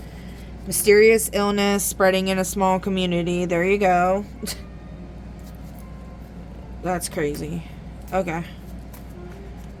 Mysterious illness spreading in a small community. There you go. That's crazy. Okay.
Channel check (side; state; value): both; identical; correlation 1.00